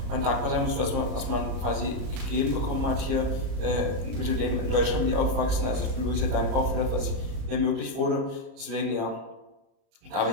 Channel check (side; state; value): left; late; 37 ms